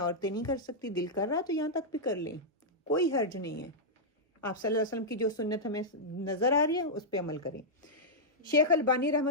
نہیں کر سکتی، دل کر رہا تو یہاں تک بھی کر لیں، کوئی حرج نہیں ہے۔ آپ صلی اللہ علیہ وسلم کی جو سنت ہمیں نظر آ رہی ہے اس پہ عمل کریں۔ شیخ البانی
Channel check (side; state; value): both; normal; correlation -0.08